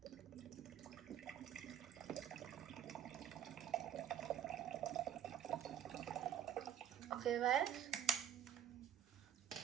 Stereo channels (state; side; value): quieter; left; 9.5 dB